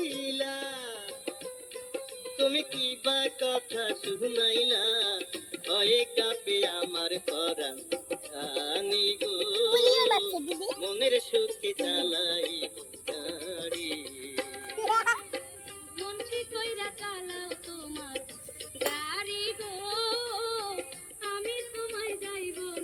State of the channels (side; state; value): both; identical; correlation 1.00